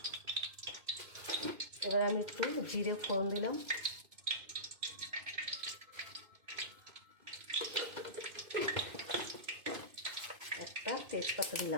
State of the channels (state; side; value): late; left; 2.5 ms